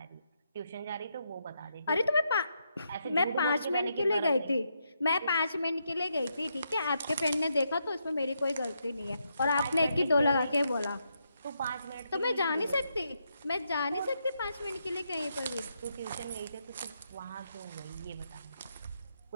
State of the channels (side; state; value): both; inverted; correlation -0.80